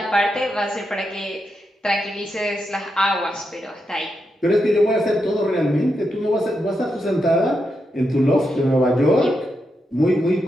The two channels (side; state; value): both; normal; correlation 0.85